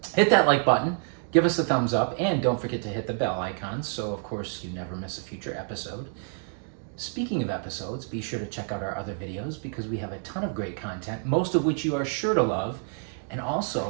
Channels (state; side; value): silent; left; 57 dB below the other